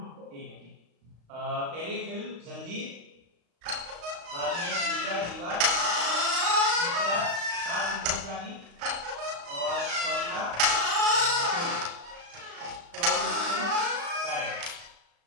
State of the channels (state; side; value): late; left; 35 ms